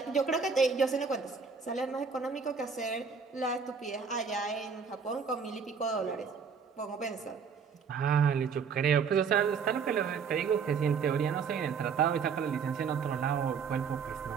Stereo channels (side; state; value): left; quieter; 6.0 dB